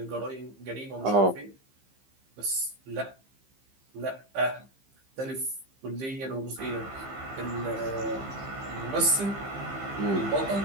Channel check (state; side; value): late; left; 15 ms